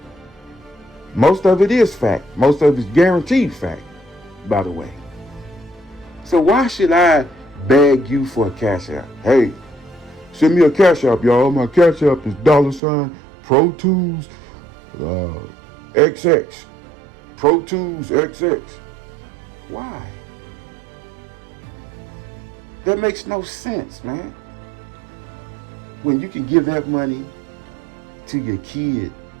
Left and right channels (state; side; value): drops out; left; at 12.8 s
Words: Most of it is fact. Most of it is guaranteed fact, by the way. So why should I beg you for a cash app? Hey, send me a cash app, y'all. My cash app is $Pro Tools XX. Pro Tools XX. Why? That makes no sense, man. When you can give that money to your kid